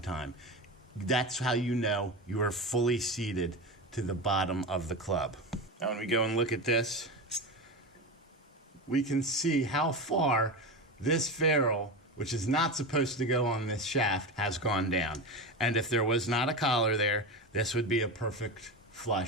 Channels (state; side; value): normal; both; correlation 0.22